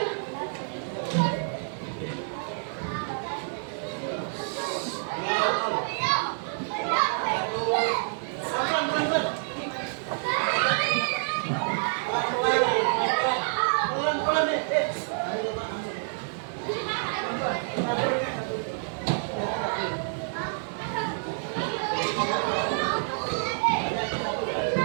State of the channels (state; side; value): silent; left; digital silence